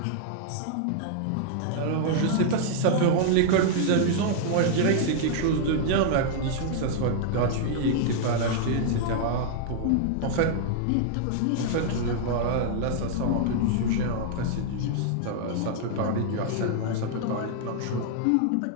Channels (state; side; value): different; both; correlation -0.01